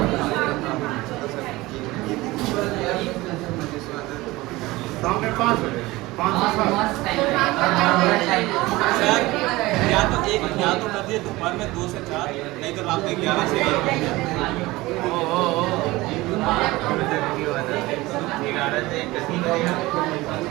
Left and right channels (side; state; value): left; quieter; 20.0 dB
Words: शाम में 5 बजे, 5 से 7। सर या तो कर दिए दोपहर में 2 से 4 नहीं तो रात में 11 से